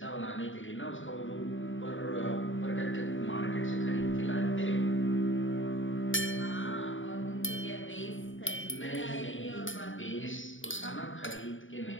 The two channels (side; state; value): right; late; 0.57 ms